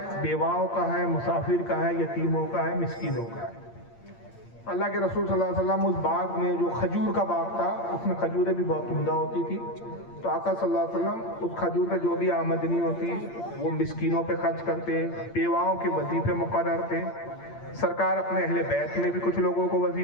بیواؤں کا ہے, مسافر کا ہے, یتیموں کا ہے, مسکینوں کا ہے. اللہ کے رسول صلی اللہ علیہ وسلم اس باغ میں, جو کھجور کا باغ تھا, اس میں کھجوریں بھی بہت عمدہ ہوتی تھی, تو آقا صلی اللہ علیہ وسلم اس کھجور میں جو بھی آمدنی ہوتی وہ مسکینوں پہ خرچ کرتے, بیواؤں کے وظیفے مقرر تھے. سرکار اپنے اہل بیت میں بھی کچھ لوگوں کو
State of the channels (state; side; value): late; right; 8.7 ms